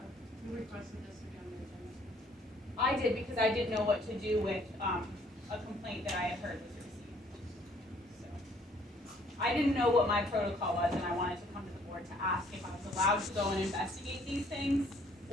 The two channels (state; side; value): normal; both; correlation 0.62